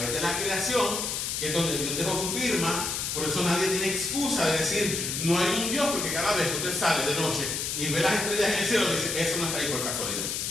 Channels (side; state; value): left; noise; hiss, 2 dB below the sound